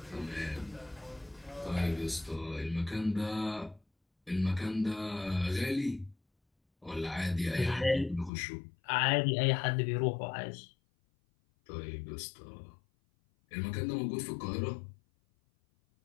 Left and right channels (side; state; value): right; drops out; at 8.3 s